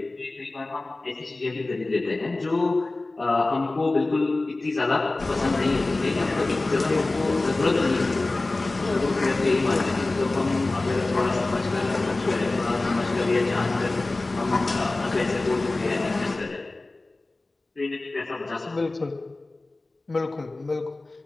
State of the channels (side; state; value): right; quieter; 3.1 dB